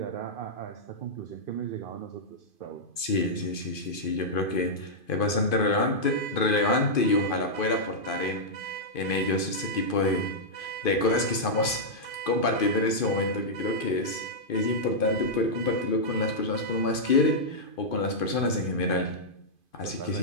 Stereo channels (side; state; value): right; late; 2.5 ms